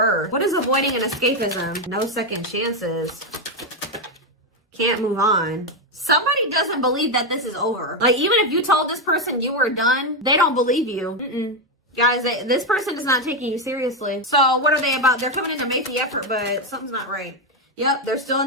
What is avoiding and escapism? No second chances. Can't move on. Somebody doesn't believe that this is over. Like, even if you told this person you were done, they don't believe you. Guys, this person is not taking you seriously. So what are they about? They're coming in to make the effort, but something's not right. Yep, they're still in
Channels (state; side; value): normal; both; correlation 0.07